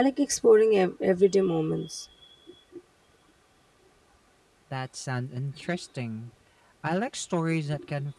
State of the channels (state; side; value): identical; both; correlation 1.00